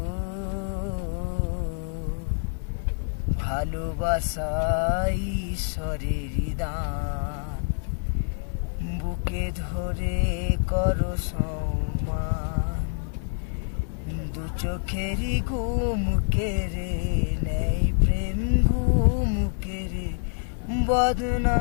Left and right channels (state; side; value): silent; right; 60 dB below the other